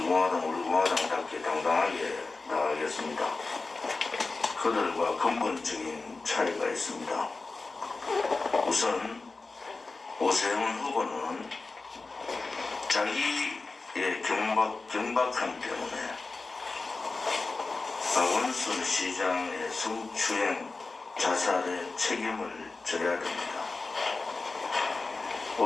공화당답게 당당하게 나가겠습니다. 그들과 근본적인 차이가 있습니다. 우선 오세훈 후보는 자기의 경박함 때문에 박원순 시장의 성추행 자살의 책임을 져야 됩니다.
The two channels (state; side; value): quieter; right; 3.8 dB